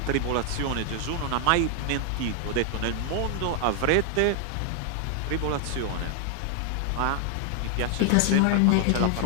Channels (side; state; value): both; different; correlation 0.00